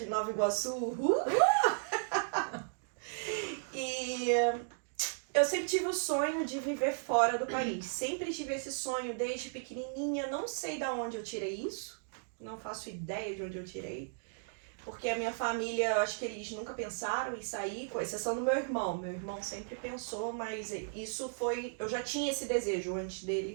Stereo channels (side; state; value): left; silent; digital silence